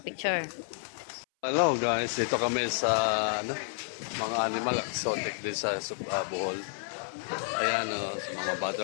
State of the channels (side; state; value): right; silent; 57 dB below the other